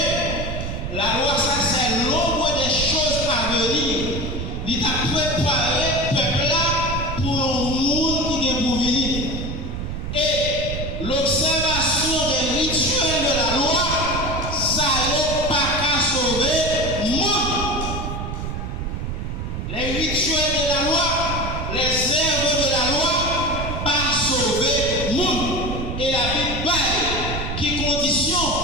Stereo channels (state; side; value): noise; right; rumble, 5 dB below the sound